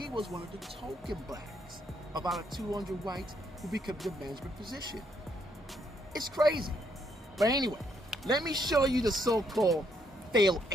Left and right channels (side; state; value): both; normal; correlation 0.73